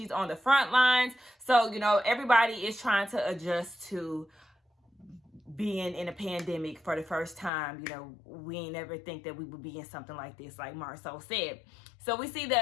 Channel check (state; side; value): drops out; right; at 7.5 s